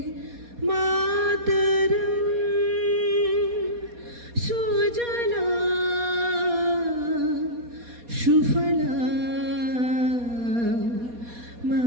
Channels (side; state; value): left; late; 4.2 ms